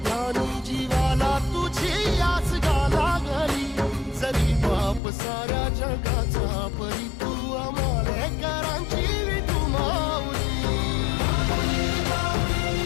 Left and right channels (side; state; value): right; drops out; at 5.0 s